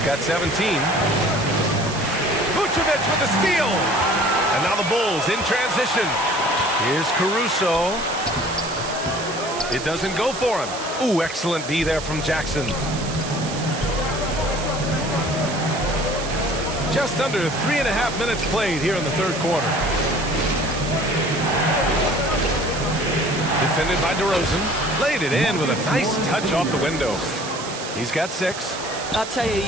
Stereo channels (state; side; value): noise; right; hiss, 10 dB below the sound